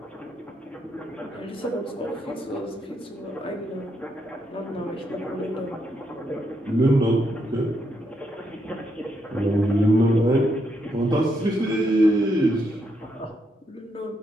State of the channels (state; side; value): normal; both; correlation 0.78